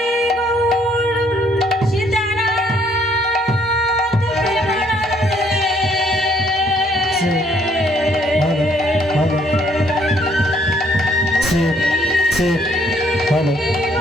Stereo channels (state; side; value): normal; both; correlation 0.66